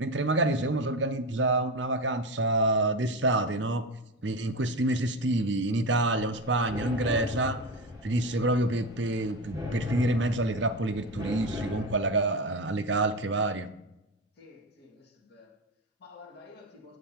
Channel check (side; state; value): both; normal; correlation 0.20